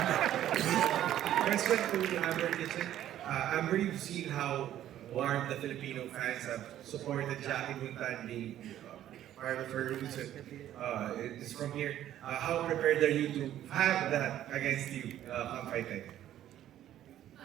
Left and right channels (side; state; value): left; quieter; 12.0 dB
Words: Question to Amber Kitchen. Amber, you've seen how warm the Filipino fans have supported Jackie Buntan being part of her roots. It's from here. How prepared are you to have that against you come fight night?